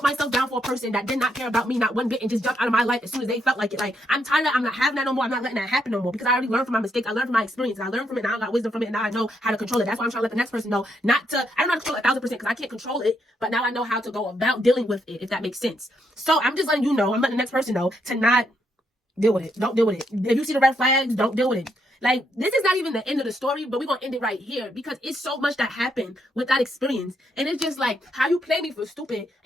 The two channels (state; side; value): normal; both; correlation 0.77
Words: myself down for a person that did not care about me, not one bit, and just jumped out of my life as soon as they felt like it. Like, I'm tired of, I'm not having that no more. I'm not letting that happen no more because I already learned from my mistakes. I learned from my experience. I learned from it. Now I got wisdom from it. And now I know how to control it. That's why I'm trying to let the next person know not to, I don't know how to control it 1000% because I can't control it, but now I know how to go about dealing with it, if that makes sense. So I'm just letting you know, I'm letting the next person know to not deal with it. Don't deal with it. If you see the red flags, don't deal with it. Like, this is not even the end of the story, but we're going to end it right here because it's so much that happened with that experience. And it's just like, how you play me for stupid